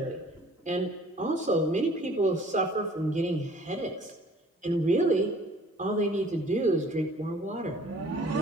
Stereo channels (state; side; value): normal; both; correlation 0.53